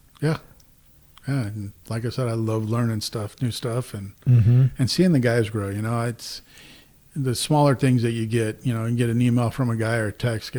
Yeah. Yeah. And like I said, I love learning new stuff and Mm-hmm. seeing the guys grow. It's the smaller things that you get. You get an email from a guy or a text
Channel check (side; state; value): both; identical; correlation 1.00